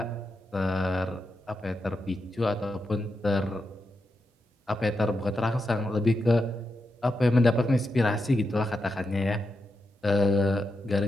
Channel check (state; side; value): normal; both; correlation 0.86